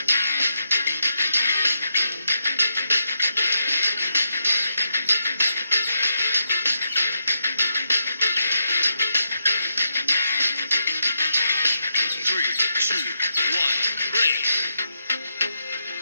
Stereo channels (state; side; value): inverted; both; correlation -0.82